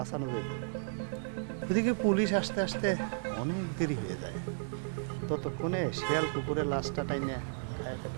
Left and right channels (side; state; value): left; silent; digital silence